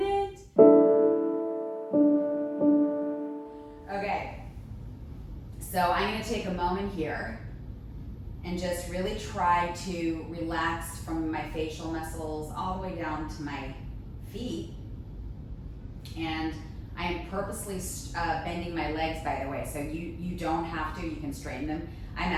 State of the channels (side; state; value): both; identical; correlation 1.00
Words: Okay, so I'm going to take a moment here and just really try to relax from my facial muscles all the way down to my feet. And I am purposely bending my legs, by the way, so you don't have to, you can straighten them. I'm